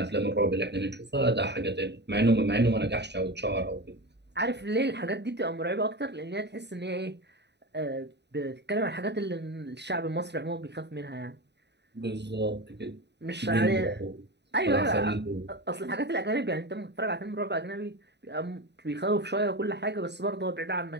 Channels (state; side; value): late; left; 0.50 ms